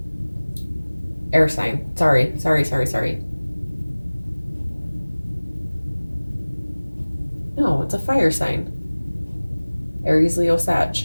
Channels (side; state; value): both; inverted; correlation -1.00